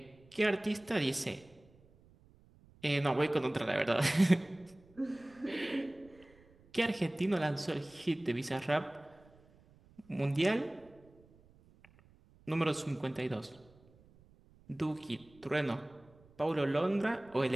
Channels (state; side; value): noise; right; rumble, 27 dB below the sound